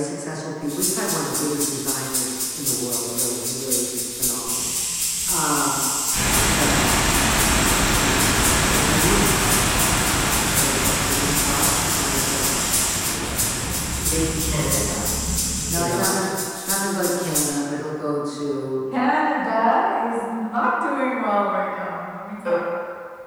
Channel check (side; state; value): both; identical; correlation 1.00